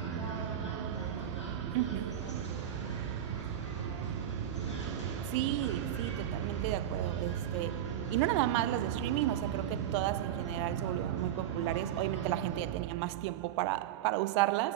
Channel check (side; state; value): left; quieter; 11.0 dB